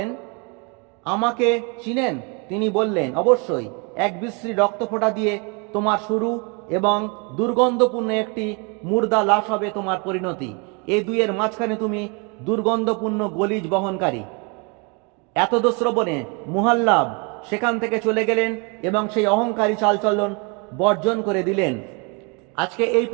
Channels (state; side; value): quieter; left; 32.0 dB